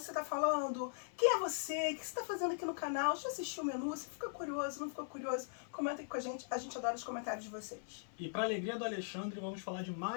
você tá falando, quem é você, o que você tá fazendo aqui no canal, já assistiu o menu, você fica curioso, não ficou curioso, comenta aqui com a gente adora os comentários de vocês. E para alegria do Alexandre, vamos falar de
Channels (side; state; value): right; silent; 51 dB below the other